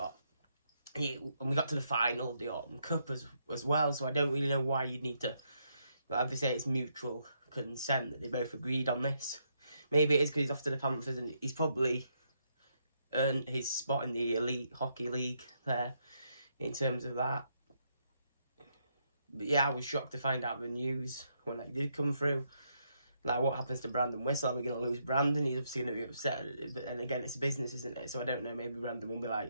And we got to the final of the Autumn Cup as well, so I don't really know why you'd need to... But I have to say it's mutual consent that they both agreed on this. Maybe it is because he's off to the Panthers and he's probably earned his spot in the Elite Hockey League there in terms of that. But yeah, I was shocked to find out the news when it did come through. Like, what happens to Brandon Whistle? Are we going to lose Brandon? He's obviously going to be upset. And again, it's business, isn't it? So I don't know. Maybe Brandon will be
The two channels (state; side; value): inverted; both; correlation -0.77